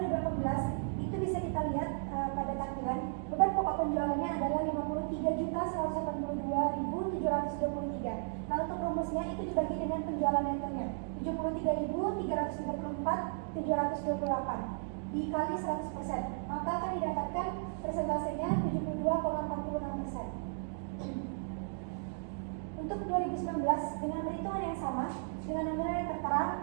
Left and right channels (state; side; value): silent; left; digital silence